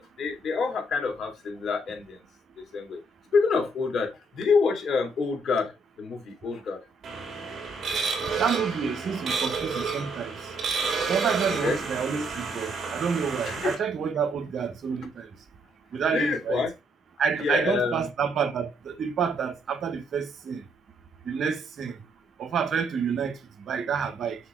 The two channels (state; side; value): normal; both; correlation 0.71